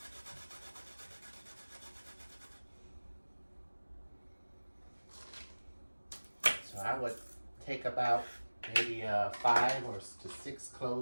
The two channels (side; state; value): both; inverted; correlation -1.00